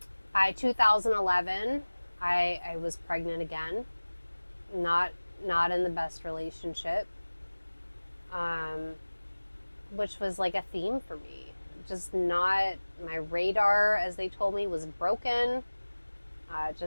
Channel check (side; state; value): both; inverted; correlation -1.00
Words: by 2011, I was pregnant again, not in the best relationship, which was like a theme for me. Just not, my radar, as they told me, was broken,